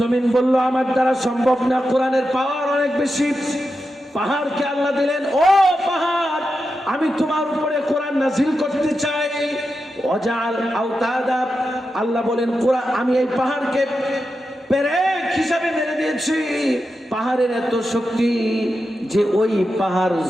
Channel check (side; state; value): both; normal; correlation 0.89